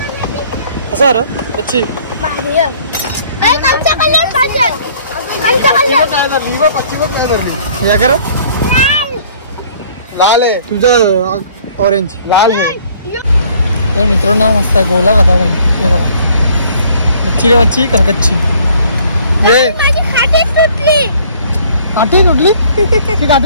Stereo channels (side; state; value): both; inverted; correlation -0.58